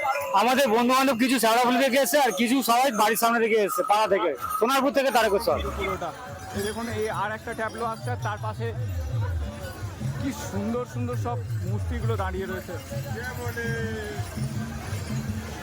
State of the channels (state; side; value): identical; both; correlation 1.00